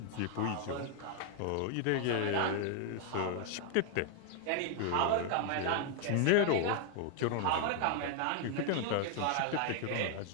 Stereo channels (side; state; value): both; different; correlation 0.00